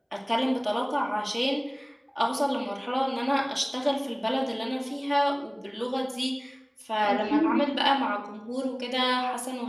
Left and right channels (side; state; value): both; identical; correlation 1.00